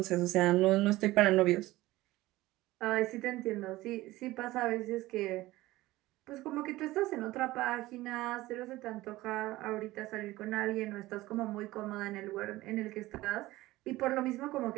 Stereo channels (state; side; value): quieter; left; 17.9 dB